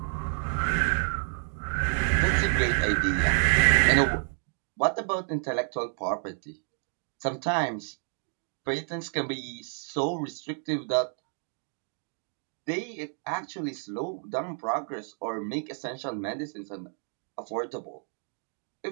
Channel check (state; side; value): silent; left; 58 dB below the other